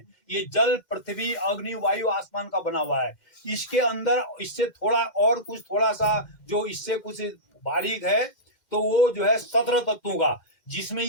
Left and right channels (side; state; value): right; late; 2.1 ms